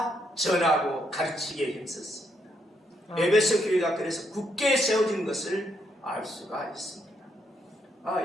전하고 가르치기에 힘썼습니다. 에베소 교회가 그래서 굳게 세워진 것을 알 수가 있습니다.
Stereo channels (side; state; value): both; normal; correlation 0.76